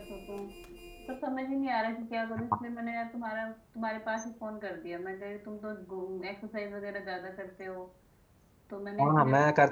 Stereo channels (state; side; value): identical; both; correlation 1.00